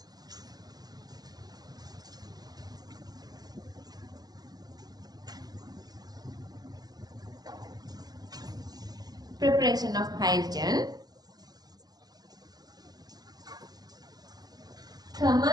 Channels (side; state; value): left; late; 0.19 ms